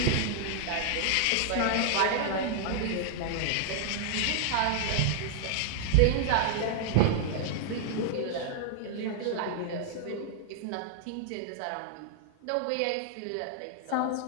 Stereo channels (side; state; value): both; different; correlation -0.01